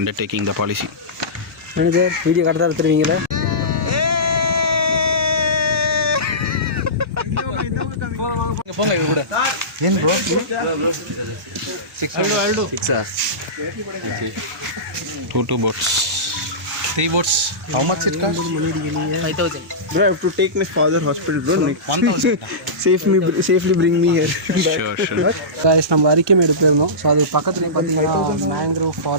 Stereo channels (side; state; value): both; normal; correlation -0.19